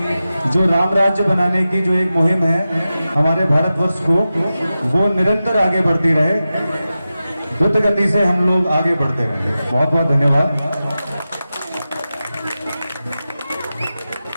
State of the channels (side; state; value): both; inverted; correlation -0.93